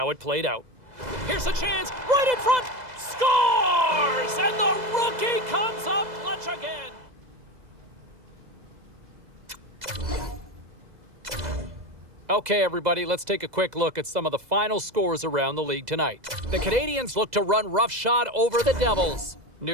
it played out. Here's a chance, right in front, scores! And the rookie comes up clutch again. Okay, everybody, let's take a quick look at some of the final scores around the league tonight. The Canadiens look to run roughshod over the Devils.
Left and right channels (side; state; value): left; late; 2.0 ms